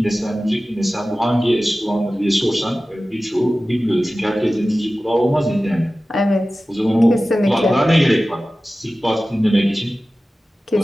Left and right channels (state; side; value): normal; both; correlation 0.96